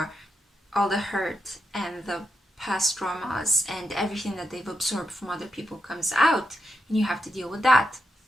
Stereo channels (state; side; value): normal; both; correlation 0.84